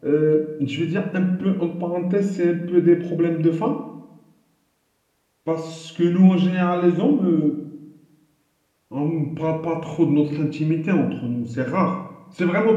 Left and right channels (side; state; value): both; identical; correlation 1.00